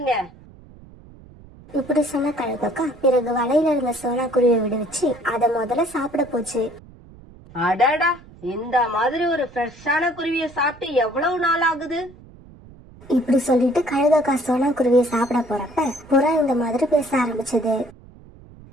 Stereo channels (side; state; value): right; noise; rumble, 22 dB below the sound